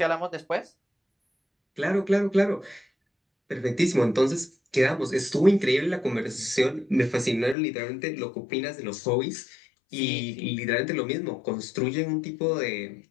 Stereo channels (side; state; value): right; drops out; at 7.6 s